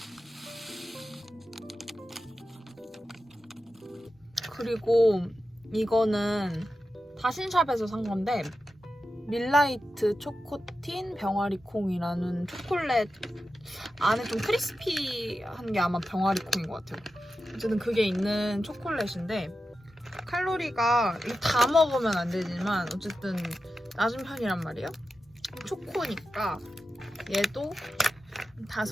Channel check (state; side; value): normal; both; correlation 0.91